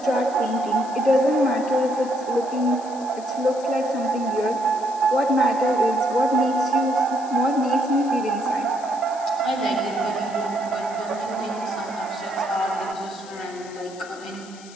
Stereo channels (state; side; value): noise; left; hiss, 20 dB below the sound